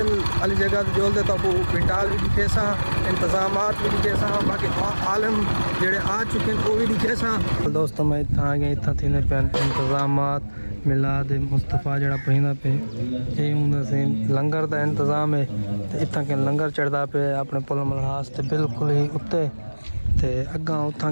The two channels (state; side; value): inverted; both; correlation -1.00